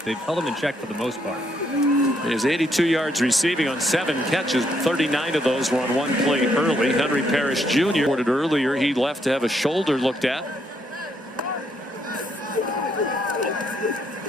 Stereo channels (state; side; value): normal; both; correlation 0.74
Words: held him in check for the most part. He has 82 yards receiving on 7 catches. 39 of those were on one play early. Henry Parrish Jr. reported earlier he left to have a shoulder looked at.